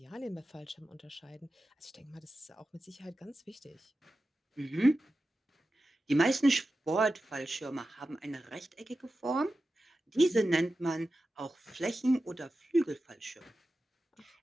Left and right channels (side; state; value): both; normal; correlation 0.93